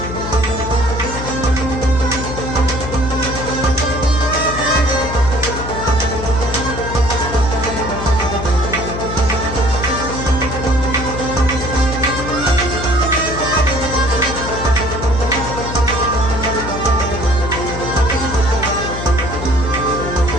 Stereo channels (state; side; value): noise; left; hum, 7 dB below the sound